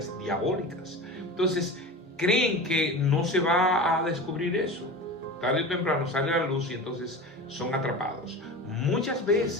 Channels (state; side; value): normal; both; correlation 0.31